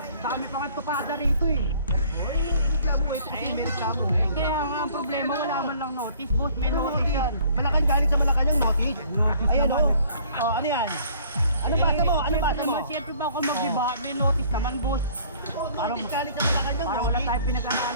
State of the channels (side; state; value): both; inverted; correlation -0.56